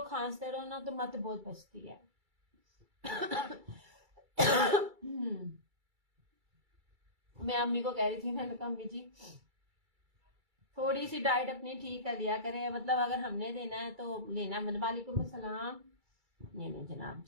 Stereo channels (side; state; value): left; late; 2.3 ms